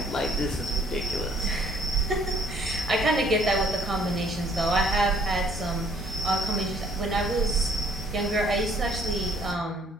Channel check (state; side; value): normal; both; correlation 0.61